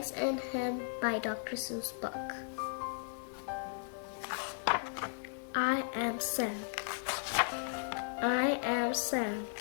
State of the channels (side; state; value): right; silent; digital silence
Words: and Ham by Dr. Seuss book? I am Sam. I am Sam.